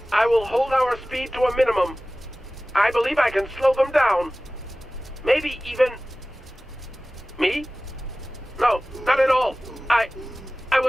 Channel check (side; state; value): both; normal; correlation 0.97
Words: I will hold our speed to a minimum. I believe I can slow them down. Maybe even... Me? No, not at all. I